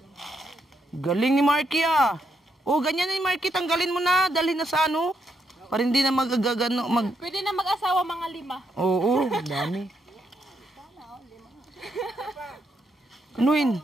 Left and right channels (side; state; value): both; normal; correlation 0.78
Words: Galing ni Marky ah. Oh, ganyan ni Marky. Tanggalin mo na. Dalhin na sa ano. Para hindi na magagano. Pwede na mag-asawa mga 5. Oo, dami. Anuin?